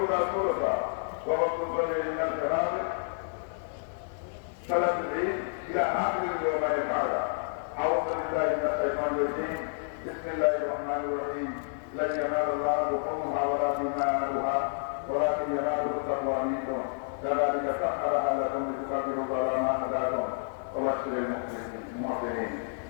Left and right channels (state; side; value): silent; right; digital silence